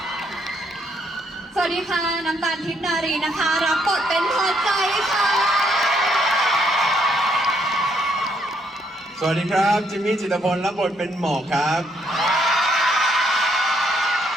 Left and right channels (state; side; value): normal; both; correlation 0.72